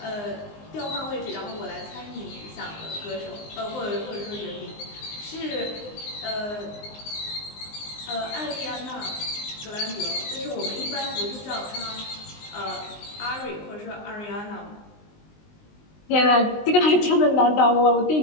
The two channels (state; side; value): late; right; 19 ms